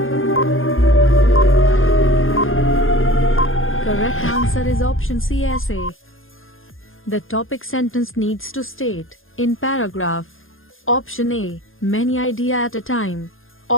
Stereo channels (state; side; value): late; right; 0.59 ms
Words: Correct answer is option C, essay. The topic sentence needs to state, in paragraph. Option A, many ideas at a time.